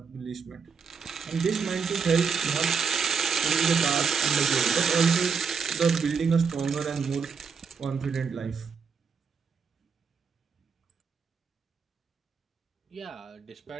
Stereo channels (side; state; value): left; quieter; 5.8 dB